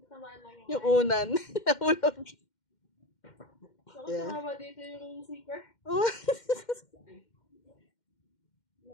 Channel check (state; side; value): late; right; 2.1 ms